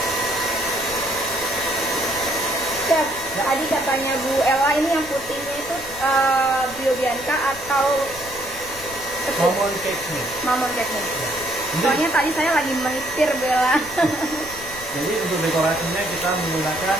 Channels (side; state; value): left; noise; rumble, 18 dB below the sound